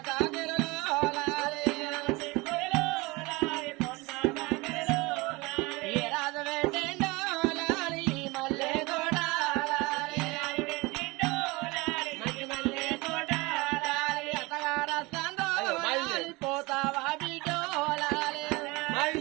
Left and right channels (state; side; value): quieter; left; 23.8 dB